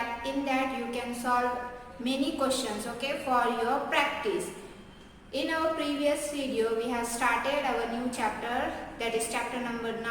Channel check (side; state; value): both; identical; correlation 1.00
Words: In that you can solve many questions, okay, for your practice. In our previous video, we have started our new chapter, that is chapter number